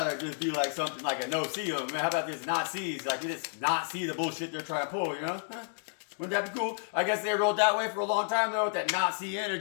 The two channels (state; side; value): silent; right; digital silence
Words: just be like something like a no-see them. How about these Nazis? Like, we just not see the bullshit they're trying to pull, you know? Wouldn't that be cool? I guess they rolled that way for a long time, though, with that Nazi